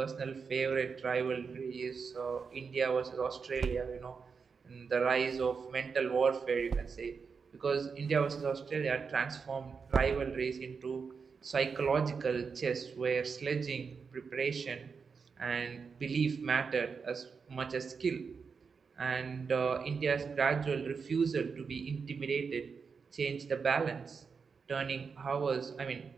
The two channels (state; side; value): quieter; left; 5.5 dB